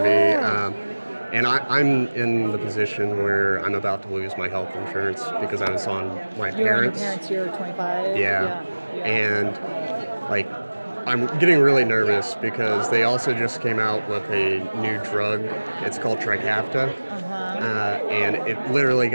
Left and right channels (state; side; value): inverted; both; correlation -1.00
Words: And I'm in the position where I'm about to lose my health insurance because I was on my parents. You're 25. Yeah. And like, I'm getting really nervous because they also just came out with a new drug. It's called Trikafta. And it literally